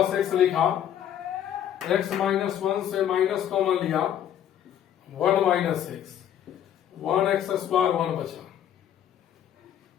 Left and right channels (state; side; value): quieter; right; 10.3 dB